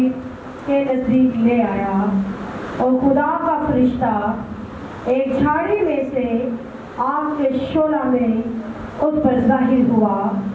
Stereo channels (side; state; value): both; identical; correlation 1.00